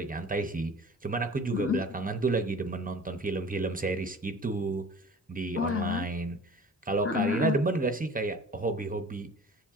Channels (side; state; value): both; normal; correlation 0.44